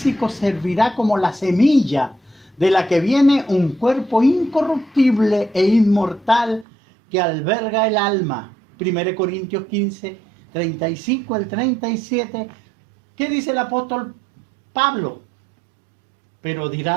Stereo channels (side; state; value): left; drops out; at 6.7 s